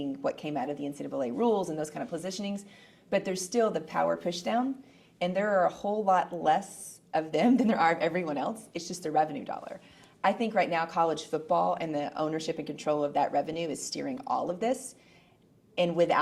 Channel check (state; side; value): identical; both; correlation 1.00